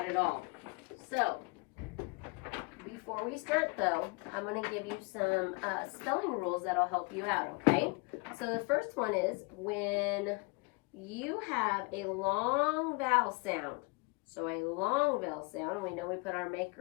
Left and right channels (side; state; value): right; quieter; 29.1 dB